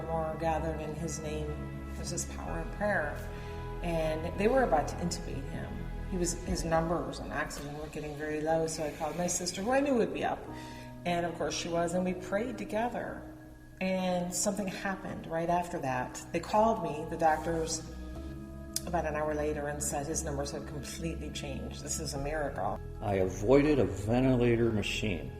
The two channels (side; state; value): both; identical; correlation 1.00